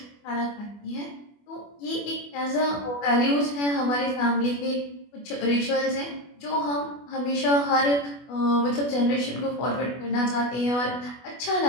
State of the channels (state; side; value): late; right; 24 ms